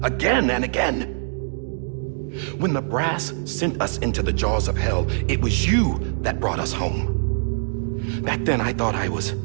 Again and again. When the brass sent us into the jaws of hell, it was you that brought us home. Back then, I thought I was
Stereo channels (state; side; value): silent; left; digital silence